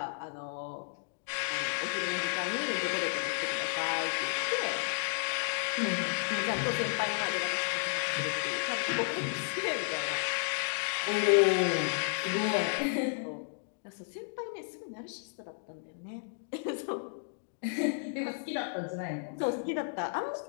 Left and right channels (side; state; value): right; silent; digital silence